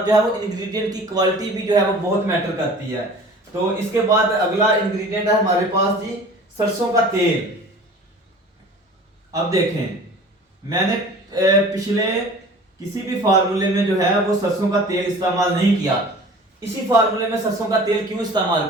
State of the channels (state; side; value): normal; both; correlation 0.44